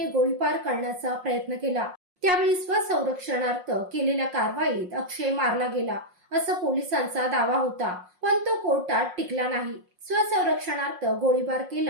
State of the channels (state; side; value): late; left; 5.6 ms